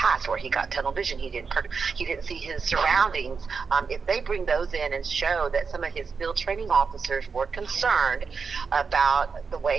where he got tunnel vision. He didn't see his surroundings. If they bring those in and show that some of his field training officers were concerned about the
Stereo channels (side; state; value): left; quieter; 5.3 dB